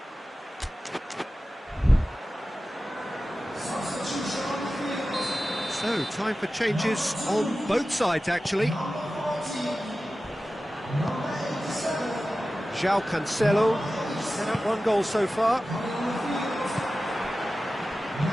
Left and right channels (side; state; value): both; normal; correlation 0.95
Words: So, time for changes on both sides, actually. João Cancelo, set up one goal so far.